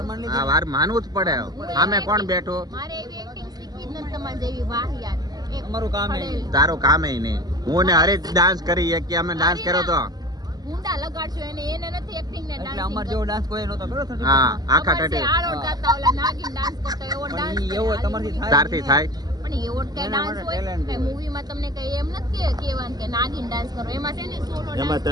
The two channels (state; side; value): late; left; 0.19 ms